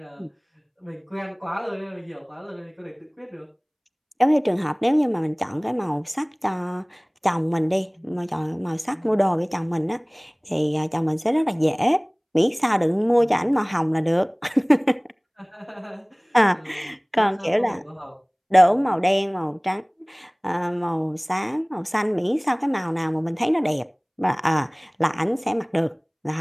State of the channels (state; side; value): identical; both; correlation 1.00